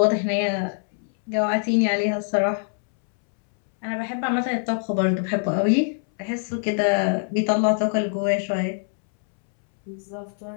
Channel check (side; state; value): right; silent; 63 dB below the other